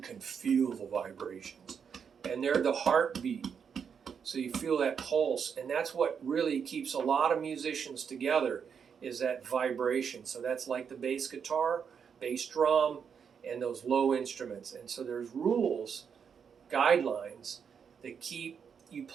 feel the vibrations, and they're the heartbeat. So you feel that pulse, and that's what really keeps a lot of musicians together, is that vibration. So that's like the bass guitar, bass drum, and those low instruments. And so there's rules, guidelines that keep you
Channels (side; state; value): left; quieter; 6.9 dB